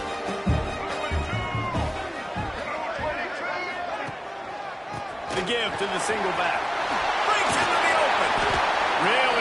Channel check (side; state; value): both; identical; correlation 1.00